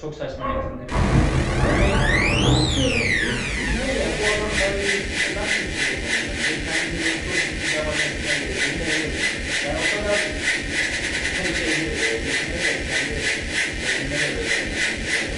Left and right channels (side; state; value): both; identical; correlation 1.00